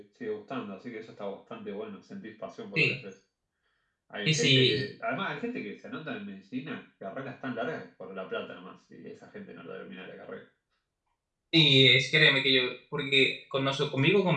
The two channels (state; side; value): identical; both; correlation 1.00